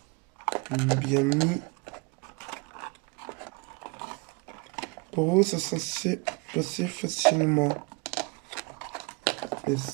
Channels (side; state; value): left; quieter; 29.8 dB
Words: bien mis. Pour vous, ça censé passer facilement. Et